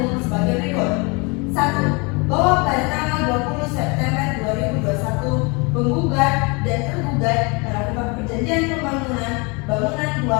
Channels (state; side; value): quieter; right; 29.6 dB